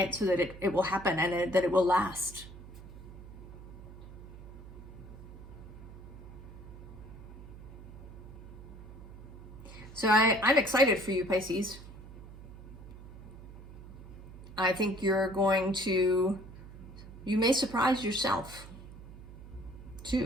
will happen and that it will last. So I'm excited for you, Pisces. I think you may surprise yourself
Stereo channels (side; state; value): right; noise; hum, 15 dB below the sound